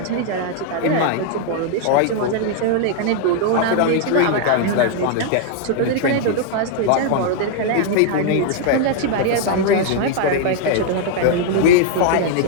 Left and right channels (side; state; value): both; different; correlation 0.00